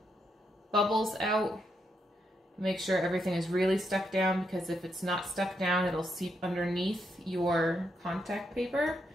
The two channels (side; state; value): both; normal; correlation 0.80